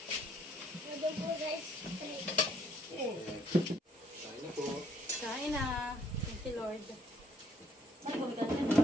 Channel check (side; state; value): both; normal; correlation 0.65